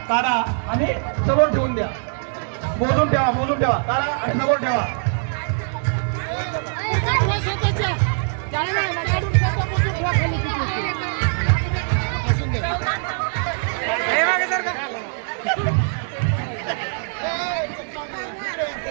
काढा आणि समोर ठेवून द्या. मोजून ठेवा काढा आणि समोर ठेवा. हे मागे सर का.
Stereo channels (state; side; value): silent; left; 63 dB below the other